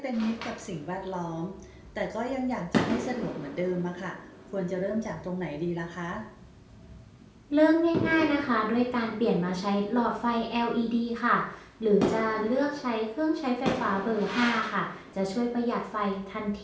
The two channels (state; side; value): identical; both; correlation 1.00